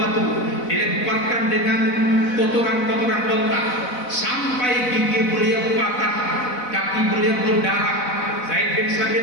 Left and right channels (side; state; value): right; late; 4.0 ms